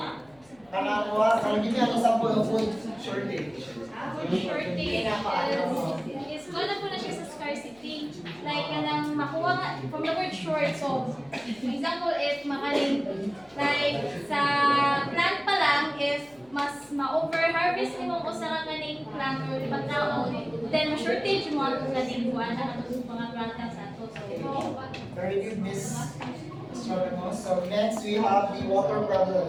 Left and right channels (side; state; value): left; noise; hum, 30 dB below the sound